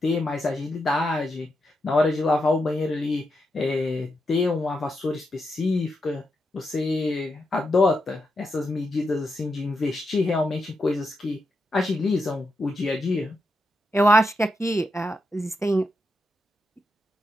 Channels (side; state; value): both; normal; correlation 0.85